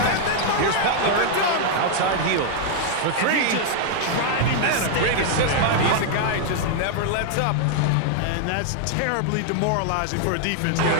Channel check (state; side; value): different; both; correlation 0.00